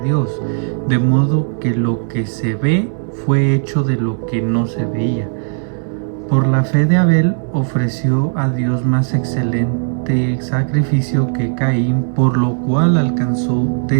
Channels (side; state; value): left; silent; 65 dB below the other